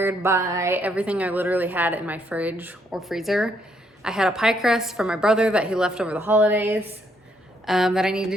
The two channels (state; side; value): normal; both; correlation 0.72